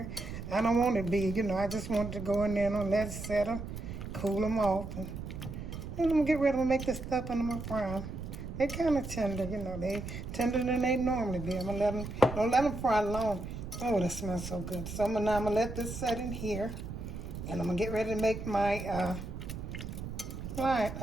I don't want it to be, I just want it to go in there and let it settle, cool them off. And then I'm gonna get ready to make this stuff and I'm gonna fry them. They're kind of tender, they tender than they normally be. I'm gonna don't let them fry long. Oh, that smells so good. So now I'm gonna let this set in here. And I'm gonna get ready to make my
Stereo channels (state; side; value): noise; right; rumble, 8 dB below the sound